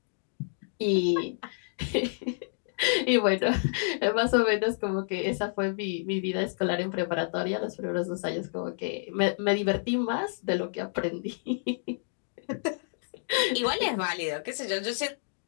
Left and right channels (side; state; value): right; silent; digital silence